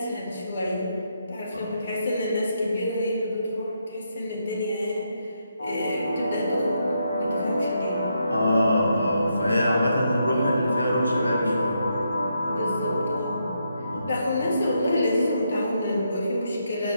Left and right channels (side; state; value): both; inverted; correlation -0.79